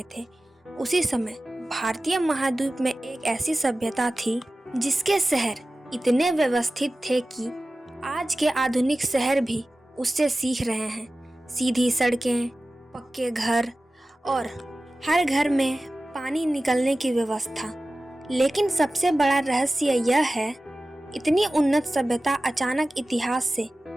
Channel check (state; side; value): normal; both; correlation 0.96